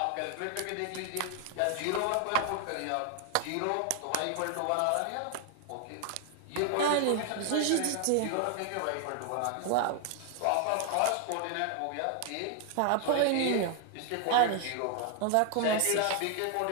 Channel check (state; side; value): different; both; correlation 0.00